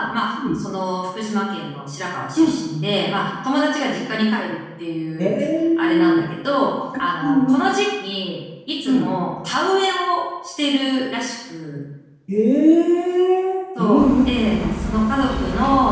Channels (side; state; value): both; identical; correlation 1.00